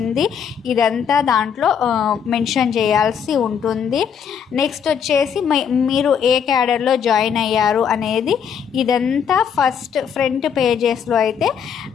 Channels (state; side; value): quieter; right; 7.5 dB